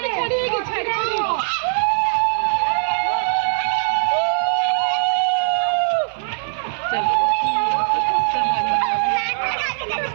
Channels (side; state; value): left; silent; 57 dB below the other